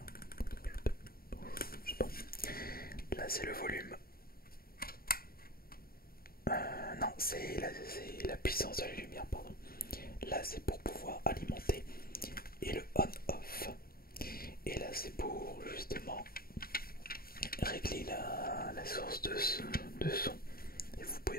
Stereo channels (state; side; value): late; right; 0.43 ms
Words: Je sais pas. Là, c'est le volume. Non, c'est la puissance de la lumière, pardon. Là, c'est pour pouvoir alimenter et le on-off. Et là, c'est pour justement régler la source de son. Et vous